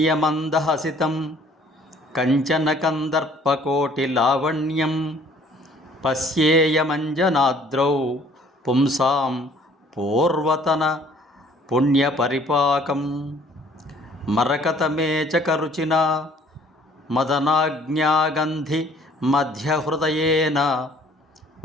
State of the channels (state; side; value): normal; both; correlation 0.57